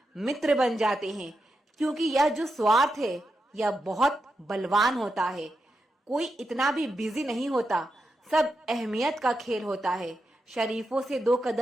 मित्र बन जाते हैं, क्योंकि यह जो स्वार्थ है यह बहुत बलवान होता है। कोई इतना भी बिजी नहीं होता, सब अहमियत का खेल होता है। शरीफों से 2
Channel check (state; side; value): normal; both; correlation 0.87